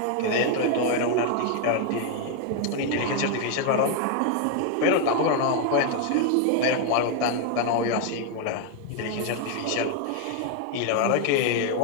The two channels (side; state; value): both; different; correlation 0.01